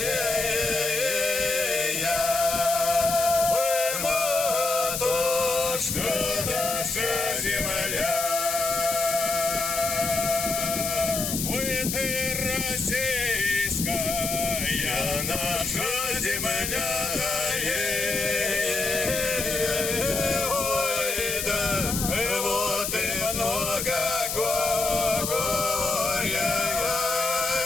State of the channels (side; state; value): left; noise; hiss, 2 dB below the sound